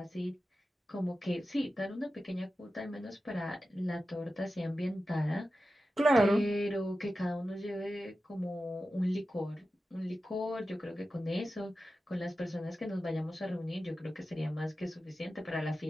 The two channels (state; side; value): normal; both; correlation 0.93